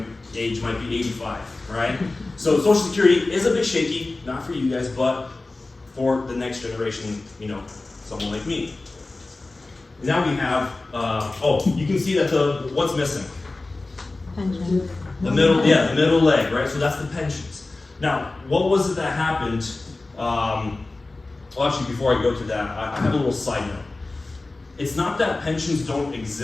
age might be 85, right? So Social Security is a bit shaky, not for you guys, but for the next generation, someone like me. Now we have, you can see that what's missing? Pension. The middle leg, right? So that's the pensions. Now, what was it that happened? Actually, before I go to that, I have a little side note. It's not that pensions don't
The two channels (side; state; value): right; quieter; 3.2 dB